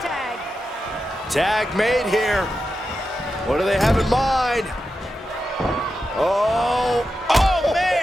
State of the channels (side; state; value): both; normal; correlation 0.89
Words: tag. Tag made here. What do they have in mind? Oh